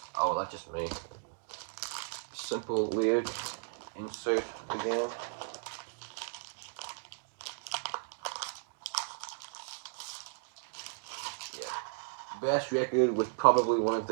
oh, that's just me. Simple lyric insert again. Best record with probably one of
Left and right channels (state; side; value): silent; left; digital silence